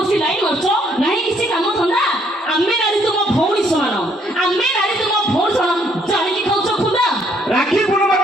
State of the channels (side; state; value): both; normal; correlation 0.67